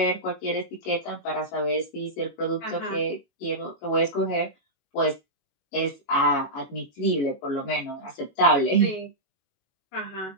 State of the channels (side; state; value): right; late; 21 ms